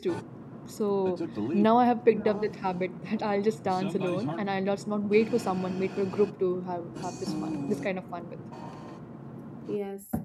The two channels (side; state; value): both; identical; correlation 1.00